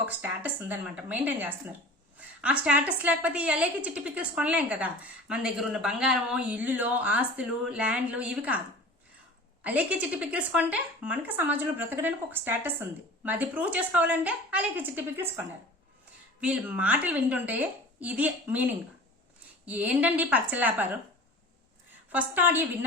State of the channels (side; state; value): both; normal; correlation 0.39